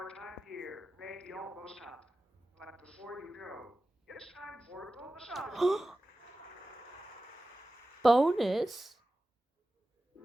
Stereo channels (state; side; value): normal; both; correlation 0.95